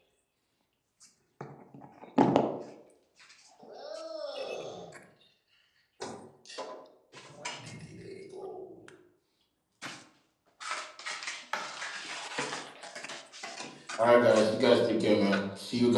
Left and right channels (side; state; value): both; identical; correlation 1.00